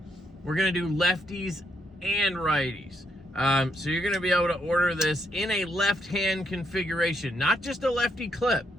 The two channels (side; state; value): both; normal; correlation 0.77